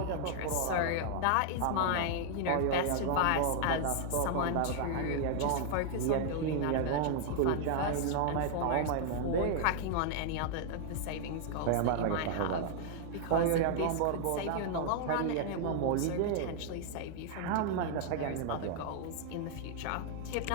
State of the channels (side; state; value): both; different; correlation 0.00